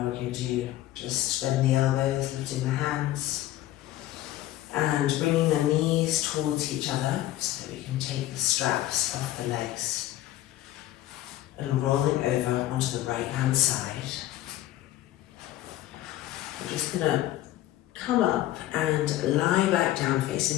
we're going to just bend the elbows, lifting the hands, and bringing the knees towards each other so that we can take the straps off the legs, and rolling over onto the right hand side. We're just going to come up and lie back down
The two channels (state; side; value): quieter; right; 14.4 dB